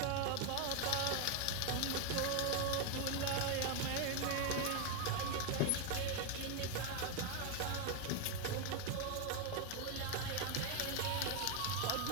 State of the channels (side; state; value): both; different; correlation 0.01